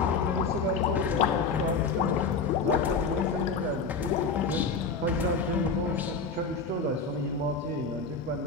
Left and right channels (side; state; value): right; quieter; 4.6 dB